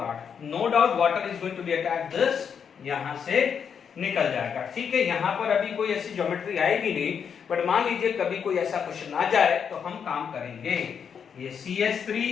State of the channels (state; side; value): quieter; right; 7.1 dB